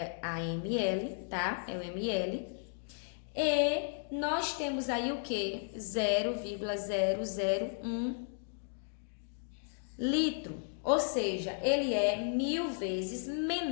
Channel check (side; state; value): right; silent; digital silence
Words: a ml, tá? É o ml. E nós temos aí o que? 0,001 litro. Ou seja, ele é 1000 vezes